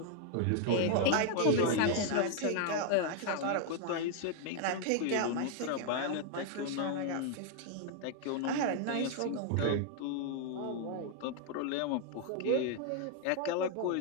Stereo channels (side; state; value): both; different; correlation 0.00